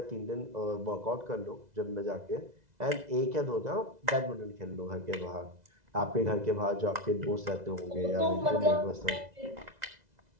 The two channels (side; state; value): left; late; 2.0 ms